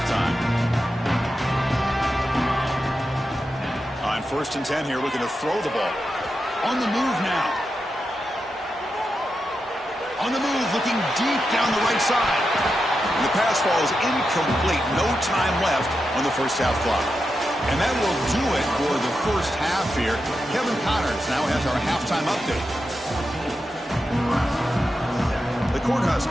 On 1st and 10 here, looking to throw the ball. On the move now. On the move, looking deep down the right side. And the pass falls incomplete. No time left on the first half clock. And that will do it for the first half here. Kevin Connors now has our halftime update. The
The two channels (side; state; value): both; normal; correlation 0.88